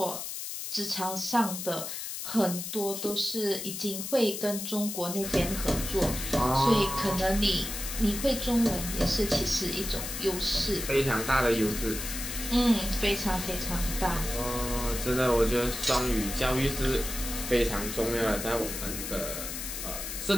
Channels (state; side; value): noise; left; hiss, 6 dB below the sound